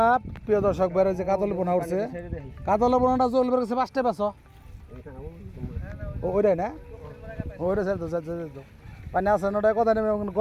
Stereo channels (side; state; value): both; identical; correlation 1.00